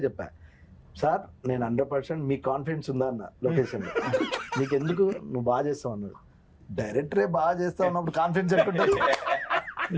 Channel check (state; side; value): identical; both; correlation 1.00